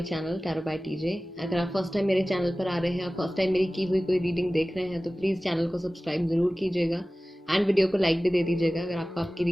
channel tarot by TJ. अगर आप first time मेरे channel पर आ रहे हैं, आप फर्स्ट टाइम मेरी की हुई कोई रीडिंग देख रहे हैं तो प्लीज़ चैनल को सब्सक्राइब ज़रूर कीजिएगा एंड वीडियो को लाइक भी दे दीजिएगा अगर आपको आपकी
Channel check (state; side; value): normal; both; correlation 0.97